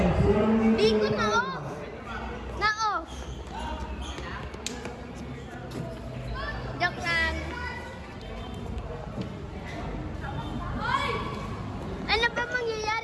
Hindi ko na-off. Na-off. Joke lang. Ano ba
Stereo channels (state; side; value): identical; both; correlation 1.00